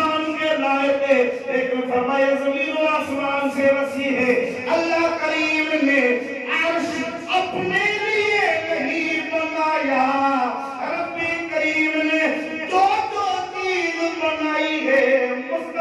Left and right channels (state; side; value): identical; both; correlation 1.00